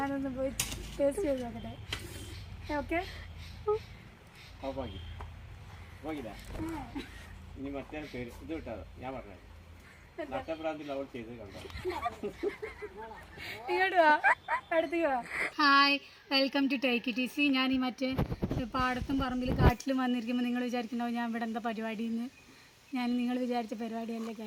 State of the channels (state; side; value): identical; both; correlation 1.00